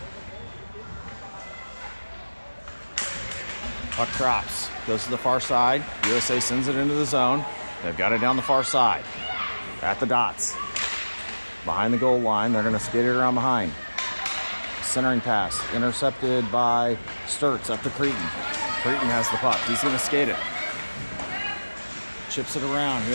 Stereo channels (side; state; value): both; inverted; correlation -1.00